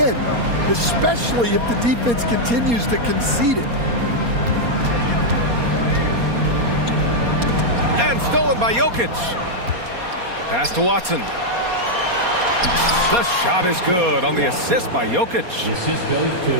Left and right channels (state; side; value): late; left; 4.2 ms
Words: especially if the defense continues to concede it. by Jokic. Pass to Watson. The shot is good on the assist by Jokic. Assist goes